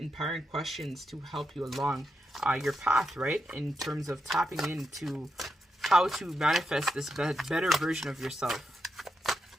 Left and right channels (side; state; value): both; normal; correlation 0.85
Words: questions to help you along your path, right, in terms of tapping into how to manifest this better version of yourself.